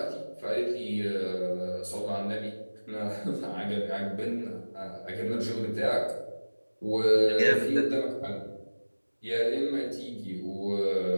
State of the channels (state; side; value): inverted; both; correlation -1.00